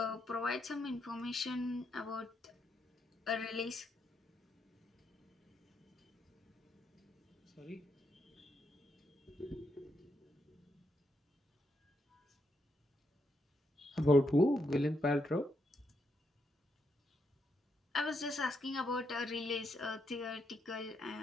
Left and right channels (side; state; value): both; normal; correlation 0.79